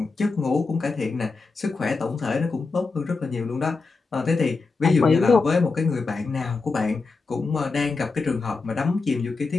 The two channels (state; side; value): quieter; right; 4.2 dB